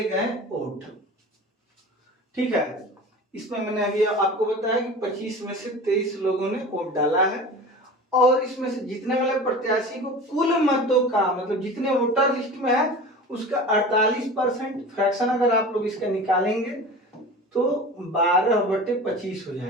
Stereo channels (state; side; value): normal; both; correlation 0.36